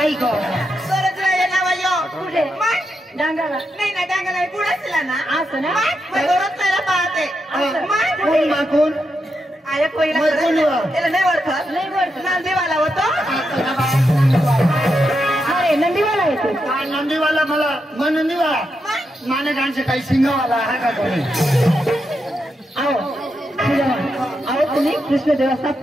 का कुठे डांगाला नाही ना डांगा नाही पुढे ना असं ना पाहते कोण माकून आया पहिला मग कोण वा? त्याला नाही ओळखत नाही बरं नांदेवाला होतो अरे नंदीवाला येतो नंदीवाला मला मग नंदीवाला मानेकांचे काही सिंगावाला आहे का कोणी अहो अहो तुम्ही कृष्ण देवाचा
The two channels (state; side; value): normal; both; correlation 0.84